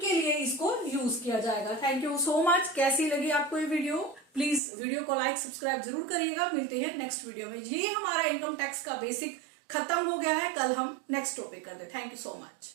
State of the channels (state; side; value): drops out; left; at 4.6 s